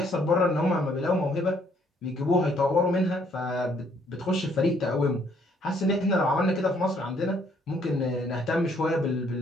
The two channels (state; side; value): normal; both; correlation 0.66